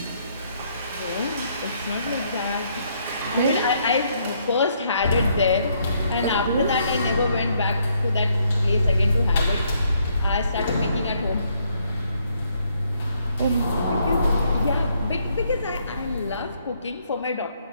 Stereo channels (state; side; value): inverted; both; correlation -0.71